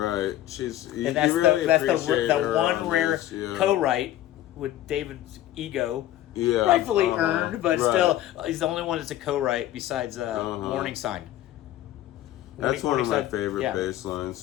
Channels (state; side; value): quieter; right; 13.5 dB